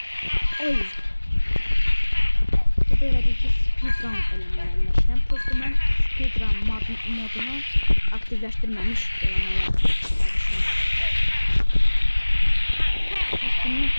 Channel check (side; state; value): both; inverted; correlation -1.00